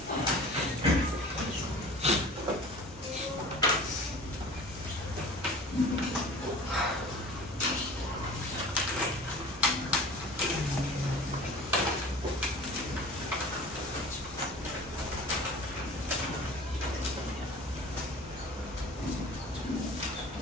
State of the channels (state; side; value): normal; both; correlation 0.42